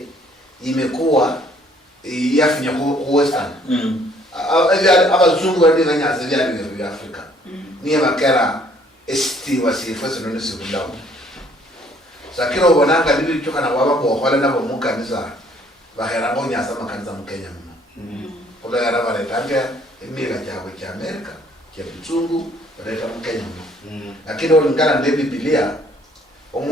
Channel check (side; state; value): both; normal; correlation 0.61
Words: imekuwa yafinya ku Western abazungu wali nyanza byali bya Africa niye bakera esti wasifose none sikulawo sakiro ubonanga bibi cyoka na baba ko khola na bomukanisa bahera ngo nyasa makanisa mu Kenya mma ola yara bare tanga emira cyabo cya America cya bizungu bare mu Kenya mma lakini olingana ne Biblia